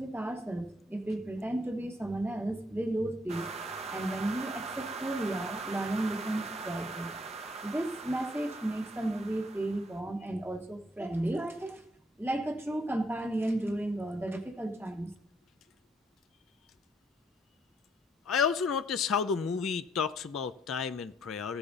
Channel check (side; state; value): both; normal; correlation 0.70